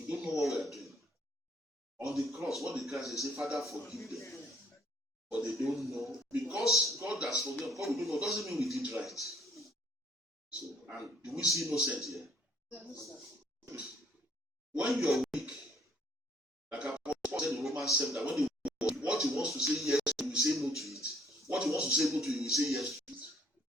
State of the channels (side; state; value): both; normal; correlation 0.61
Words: don't know what we are doing. On the cross, what the Christ say, Father, forgive them. But they don't know. Because God has forgiven, God we don't know, doesn't mean we did right. So, and do we see innocent here? When you are weak, like Apostle said in Romans 7, that when they what he wants to say yes, he will say no to it. What he wants to say no to, he will say yes to it.